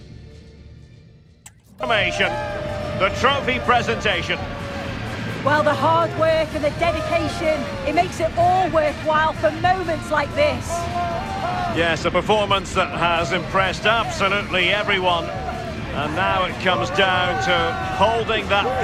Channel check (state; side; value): identical; both; correlation 1.00